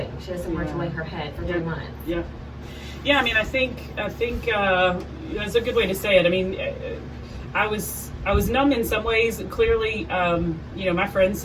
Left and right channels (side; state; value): both; identical; correlation 1.00